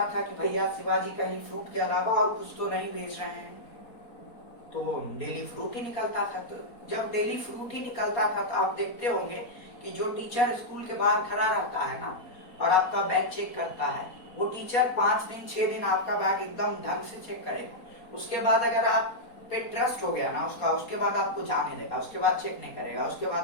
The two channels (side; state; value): right; late; 4.2 ms